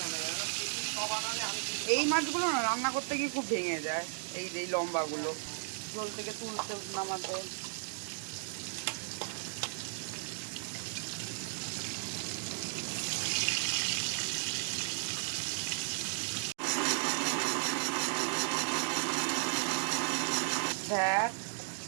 এই মাছগুলো না রান্না করতে গিয়ে খুব ভেঙে যায়, এই যে লম্বাগুলো ঝোল থেকে তুলতে নামাতে।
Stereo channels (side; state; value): left; silent; digital silence